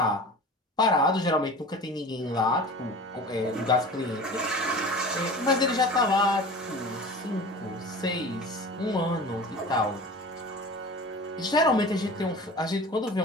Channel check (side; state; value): both; normal; correlation 0.38